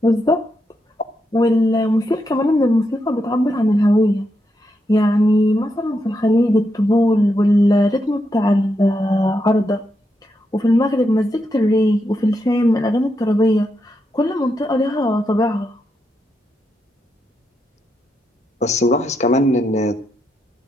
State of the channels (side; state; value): both; normal; correlation 0.83